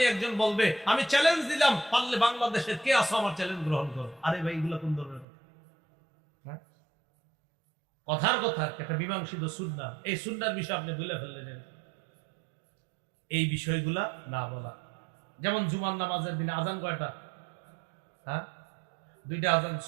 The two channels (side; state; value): left; drops out; at 5.2 s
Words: একজন বলবে আমি চ্যালেঞ্জ দিলাম, পারলে বাংলাদেশের কে আসো আমার চ্যালেঞ্জ গ্রহণ করো। আরে ভাই এগুলো কোন ধরনের কথা? কথার কথা একটা মীমাংসিত সুন্নাহ, এই সুন্নাহর বিষয় আপনি ভুলে ফেললেন। এই বিষয়গুলা না বলা। যেমন জুমার নামাজের দিনে আজান কয়টা? 2টা আজান